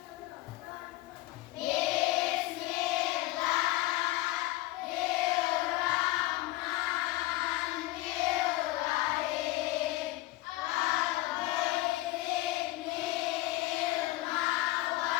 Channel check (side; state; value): right; quieter; 18.4 dB